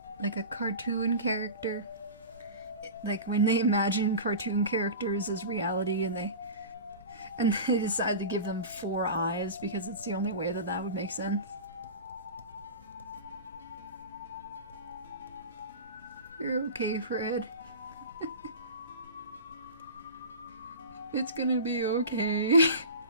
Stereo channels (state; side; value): inverted; both; correlation -0.33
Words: Like a cartoon character. Like when they imagine cartoon characters as reality and they decide to give them 4 eyes because it's the only way that would make sense. You're okay, Fred. It's gonna be okay.